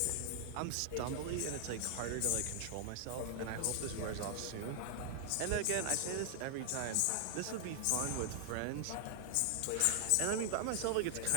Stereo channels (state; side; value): different; both; correlation 0.00